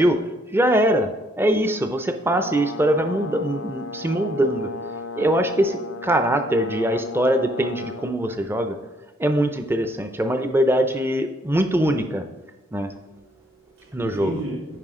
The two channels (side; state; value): both; normal; correlation 0.68